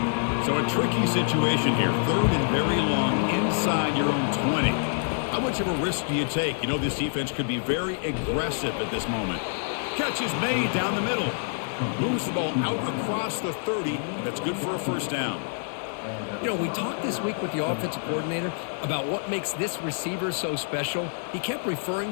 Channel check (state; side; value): silent; right; 59 dB below the other